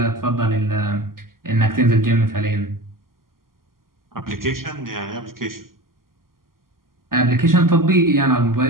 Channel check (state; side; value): late; left; 0.91 ms